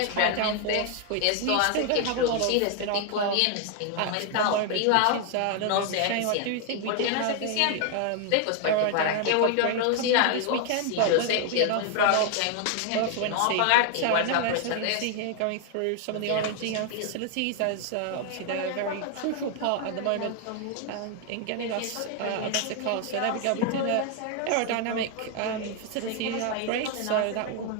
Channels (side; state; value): both; different; correlation 0.00